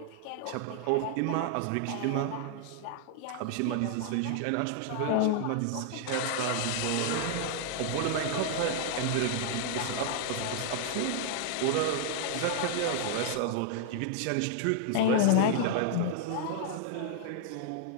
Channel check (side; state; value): both; different; correlation 0.00